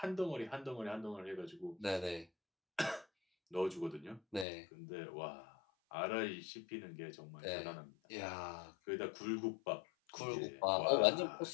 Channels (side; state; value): right; drops out; at 4.5 s